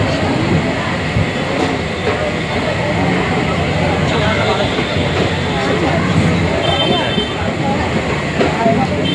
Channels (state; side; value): identical; both; correlation 1.00